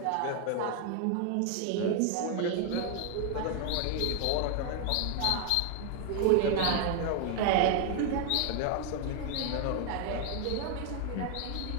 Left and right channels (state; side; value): different; both; correlation 0.00